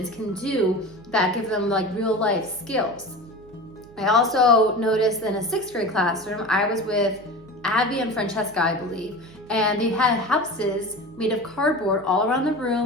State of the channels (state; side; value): noise; right; hum, 24 dB below the sound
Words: can do that give them like real life skills. I also noticed in a 6th grade classroom, I was with Abby and Francesca, I believe, and they had houses made of cardboard all around the